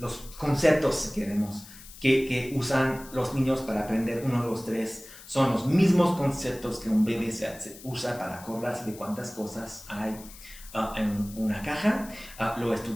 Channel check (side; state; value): left; noise; hiss, 18 dB below the sound